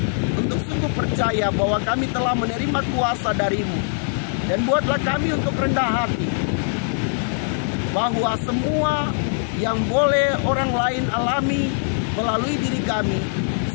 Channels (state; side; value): silent; right; 64 dB below the other